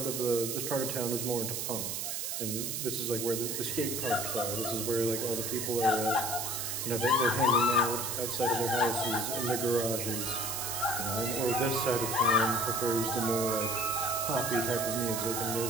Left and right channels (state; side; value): noise; right; hiss, 2 dB below the sound